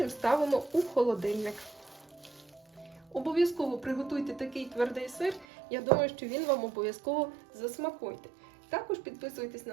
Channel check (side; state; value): left; drops out; at 5.5 s